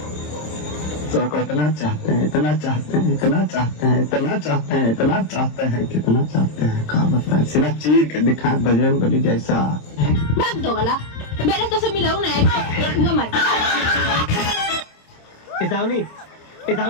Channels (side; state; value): right; late; 27 ms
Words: तो को इतना चाहते हैं, इतना चाहते हैं, इतना चाहते हैं, इतना चाहते हैं, इतना चाहते हैं, कितना चाहते हैं, कहा बताए, सीना चीर के दिखाए बजरंग बली जैसा। भाग दो वाला, मैंने तो सब मिलाऊं ना मत।